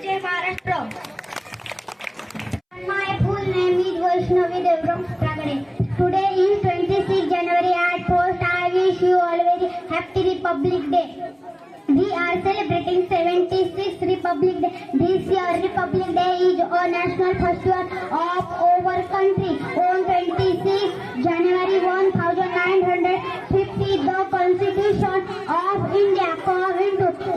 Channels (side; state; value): both; identical; correlation 1.00